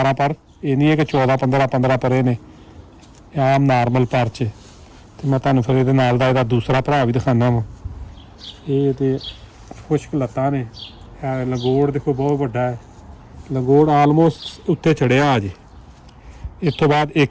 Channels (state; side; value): identical; both; correlation 1.00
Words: ਪਰ, ਇਹ ਨਹੀਂ ਹੈ ਕਿ 14 15 ਪਰੇ ਨੇ, ਆਮ ਨਾਰਮਲ ਪਰ 'ਚ। ਤੇ ਮੈਂ ਤੁਹਾਨੂੰ ਫਿਰ ਇਹਦੇ ਨਾਲ ਦਾ ਇਹਦਾ ਦੂਸਰਾ ਭਰਾ ਵੀ ਦਿਖਾਉਂਦਾ ਵਾਂ। ਇਹ ਤੇ ਖੁਸ਼ਕ ਲੱਤਾਂ ਨੇ। ਲੰਗੋੜ ਦੇਖੋ ਬਹੁਤ ਵੱਡਾ ਹੈ, ਲੰਗੋੜ ਆਲਮੋਸਟ ਉੱਤੇ ਚੜਿਆ ਅਜੇ। ਇਸ ਤੋਂ ਬਾਅਦ